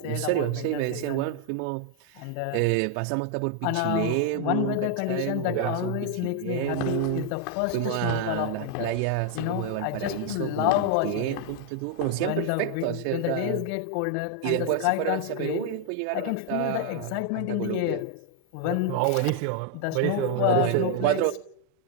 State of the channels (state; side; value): different; both; correlation 0.00